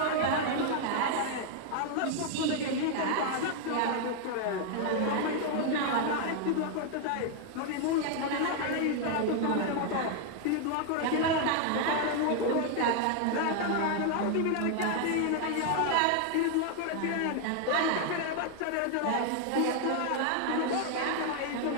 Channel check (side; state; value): both; different; correlation 0.00